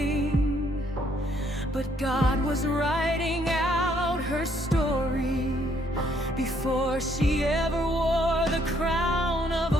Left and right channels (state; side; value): normal; both; correlation 0.68